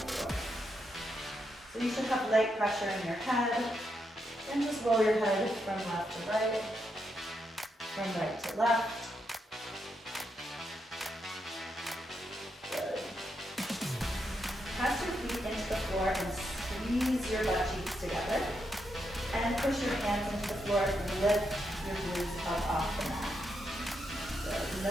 So you should have light pressure in your head, and just roll your head from left to right, from right to left. Good. Press your feet into the floor and squeeze your butt cheeks together. And push your hands into the floor and lift your glutes up off the mat. So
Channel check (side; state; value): both; normal; correlation 0.82